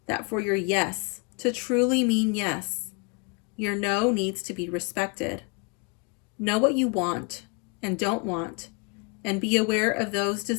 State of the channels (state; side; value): quieter; right; 33.6 dB